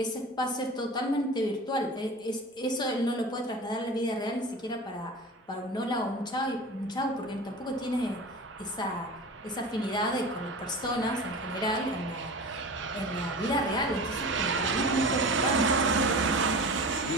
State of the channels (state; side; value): normal; both; correlation 0.33